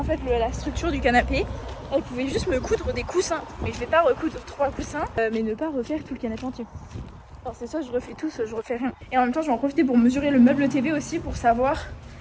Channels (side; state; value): both; identical; correlation 1.00